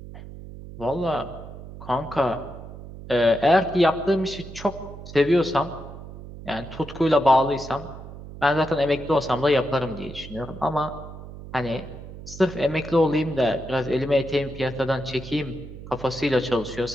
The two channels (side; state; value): right; noise; hum, 13 dB below the sound